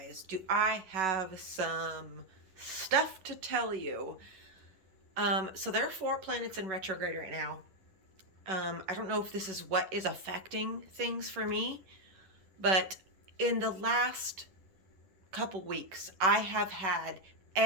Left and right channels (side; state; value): left; late; 11 ms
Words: Do I have some stuff to tell you? So there are 4 planets in retrograde right now. I don't know if this is what is affecting things for me, but in the last couple weeks, I have had